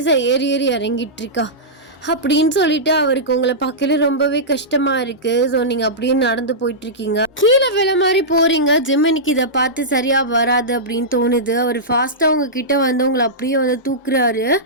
ஏறி இறங்கிட்டு இருக்கா. அப்படின்னு சொல்லிட்டு அவருக்கு உங்களை பார்க்கல ரொம்பவே கஷ்டமா இருக்கு. ஸோ நீங்க அப்படியே நடந்து போயிட்டு இருக்கீங்க, கீழே விழ மாதிரி போறீங்க. ஜிமினிக்கு இதை பார்த்து சரியா வராது அப்படின்னு தோணுது. அவர் ஃபாஸ்டா உங்ககிட்ட வந்து உங்களை அப்படியே வந்து தூக்குறாரு.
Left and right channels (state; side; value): normal; both; correlation -0.13